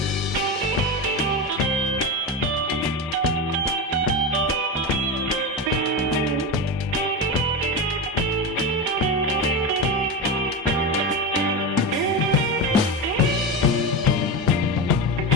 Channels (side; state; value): both; normal; correlation 0.20